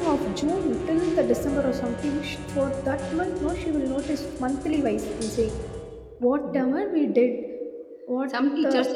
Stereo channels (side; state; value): both; identical; correlation 1.00